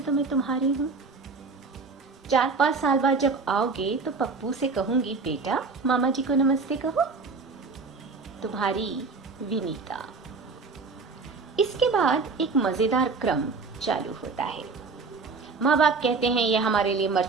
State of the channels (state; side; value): quieter; left; 4.4 dB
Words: तो मैं तुम्हारी हूँ। 4-5 साल बाद जब आओगे तो पप्पू से कहूंगी, बेटा मामा जी को नमस्ते कहो। तुम्हारी विनीता। इसके बाद एक मजेदार क्रम चालू होता है। माँ बाप कहते हैं यह हमारे लिए मर